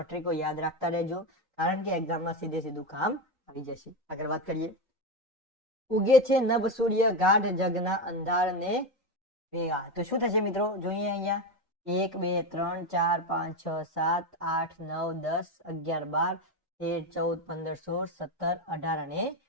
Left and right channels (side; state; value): both; normal; correlation 0.14